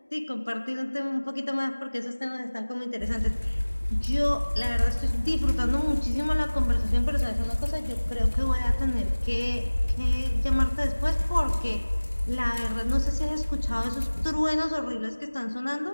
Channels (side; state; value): both; inverted; correlation -1.00